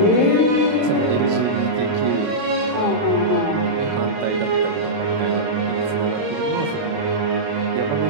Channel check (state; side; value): late; left; 28 ms